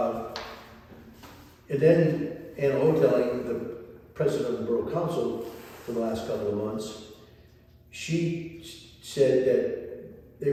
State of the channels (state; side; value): identical; both; correlation 1.00